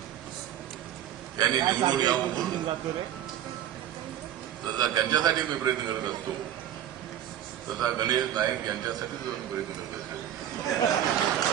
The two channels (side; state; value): left; quieter; 11.2 dB